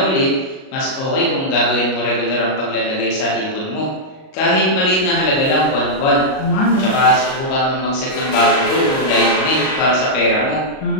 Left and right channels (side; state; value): right; late; 38 ms